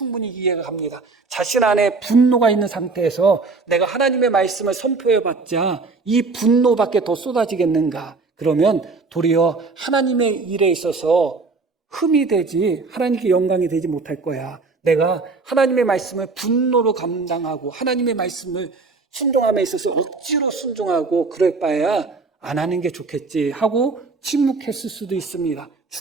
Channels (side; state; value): left; quieter; 4.1 dB